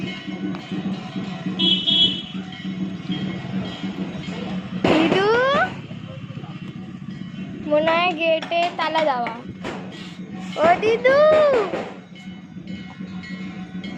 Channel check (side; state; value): both; identical; correlation 1.00